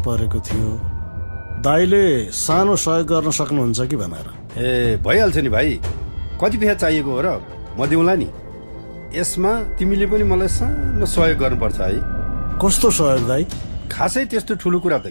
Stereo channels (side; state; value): both; inverted; correlation -1.00